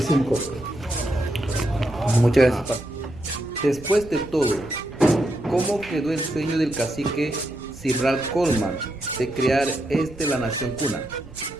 Muchas gracias. Después de todo, ¿cómo quedó el sueño del cacique Simral Coleman de crear la nación cuna?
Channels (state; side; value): normal; both; correlation 0.82